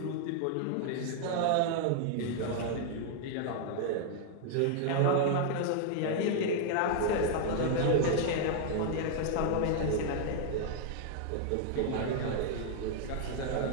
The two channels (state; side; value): different; both; correlation 0.00